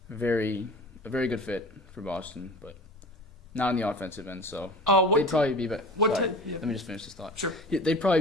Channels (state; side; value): normal; both; correlation 0.39